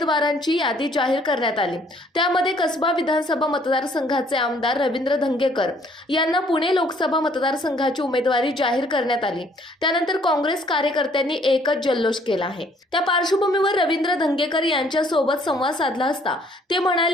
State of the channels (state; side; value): normal; both; correlation 0.62